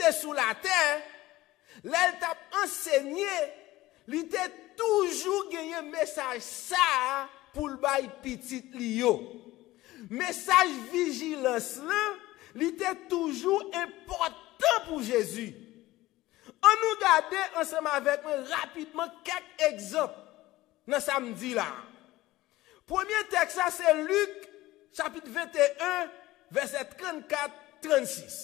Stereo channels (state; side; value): quieter; right; 17.5 dB